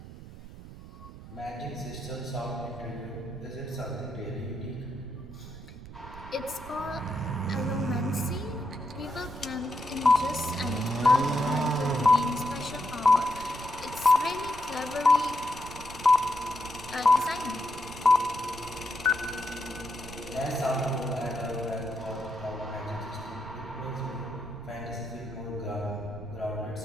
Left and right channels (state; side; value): noise; right; rumble, 15 dB below the sound